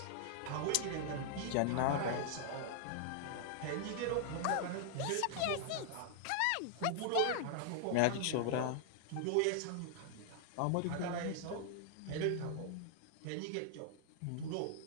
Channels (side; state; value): both; different; correlation 0.00